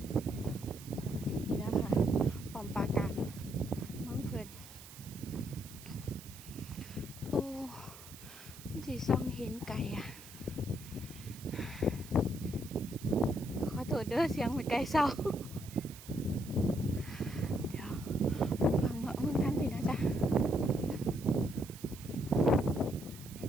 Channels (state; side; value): noise; right; hiss, 17 dB below the sound